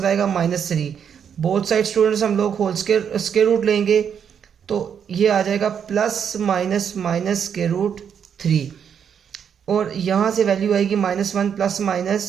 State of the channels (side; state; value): left; quieter; 7.8 dB